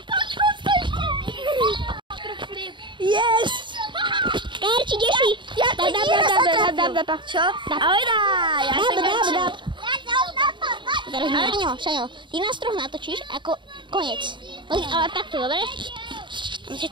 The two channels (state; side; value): late; left; 0.23 ms